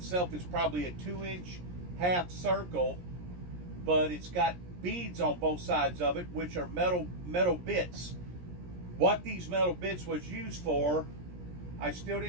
is probably a 2-inch half circle, but it's got beads on both sides of it, which are metal bits. What these metal bits was used for, I still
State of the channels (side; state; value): left; late; 17 ms